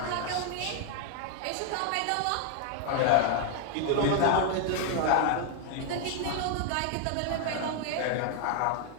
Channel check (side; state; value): both; different; correlation 0.00